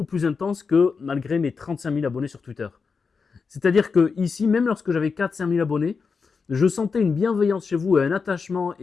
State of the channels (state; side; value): quieter; right; 5.2 dB